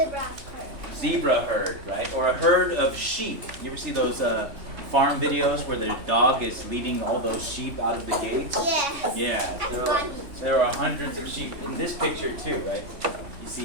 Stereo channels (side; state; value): left; late; 3.2 ms